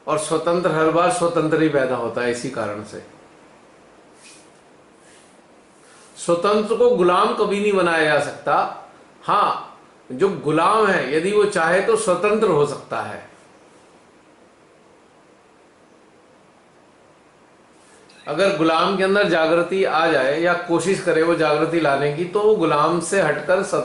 और स्वतंत्र हर बार स्वतंत्र ही पैदा होता है। इसी कारण से स्वतंत्र को गुलाम कभी नहीं बनाया जा सकता। हाँ, जो गुलाम है यदि वो चाहे तो स्वतंत्र हो सकता है। अगर गुलाम के अंदर जागृति आ जाए या कोशिश करे वो जागृति लाने की, तो वो गुलाम से हटकर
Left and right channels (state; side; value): identical; both; correlation 1.00